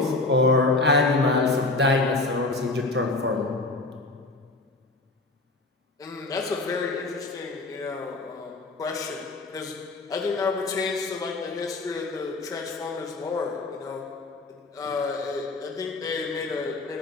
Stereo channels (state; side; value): quieter; right; 3.2 dB